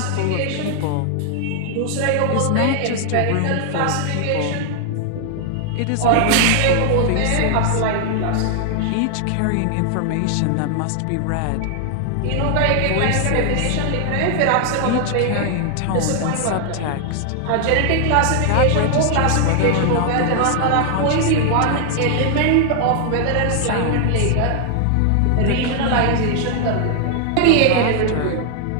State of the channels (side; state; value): both; different; correlation 0.00